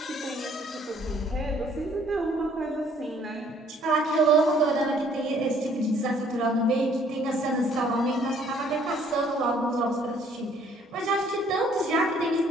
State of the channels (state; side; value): normal; both; correlation 0.61